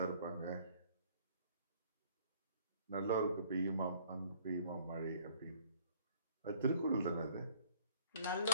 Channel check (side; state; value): both; inverted; correlation -0.57